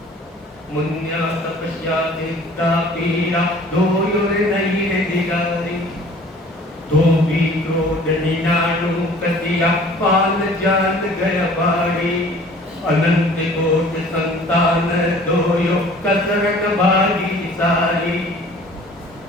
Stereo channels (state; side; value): normal; both; correlation 0.50